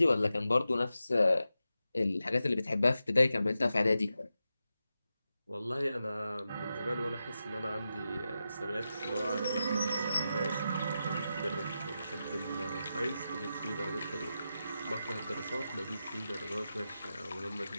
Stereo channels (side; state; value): both; inverted; correlation -0.90